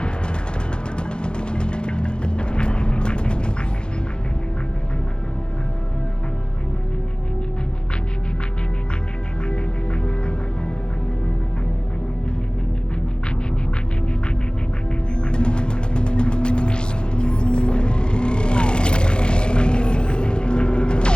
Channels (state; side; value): late; right; 0.049 ms